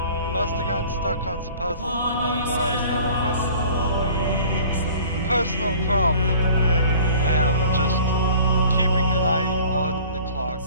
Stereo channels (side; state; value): both; inverted; correlation -0.47